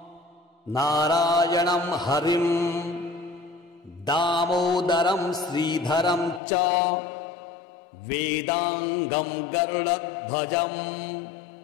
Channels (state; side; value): drops out; right; at 6.4 s